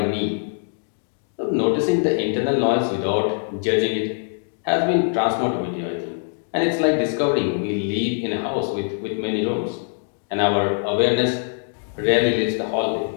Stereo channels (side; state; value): right; silent; digital silence